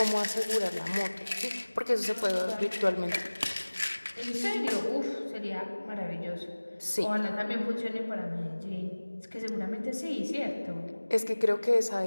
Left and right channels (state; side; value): inverted; both; correlation -1.00